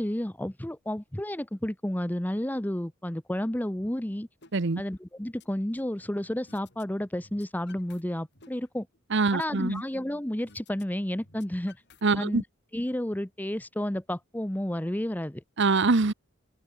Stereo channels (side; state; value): both; normal; correlation 0.67